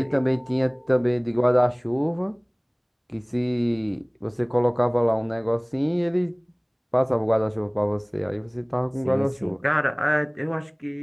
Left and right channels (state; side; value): identical; both; correlation 1.00